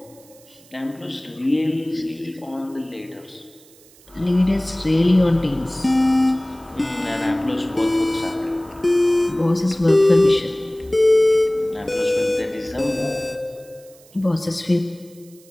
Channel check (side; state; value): right; noise; hiss, 27 dB below the sound